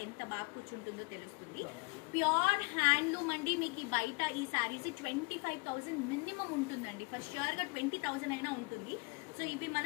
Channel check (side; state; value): right; quieter; 29.0 dB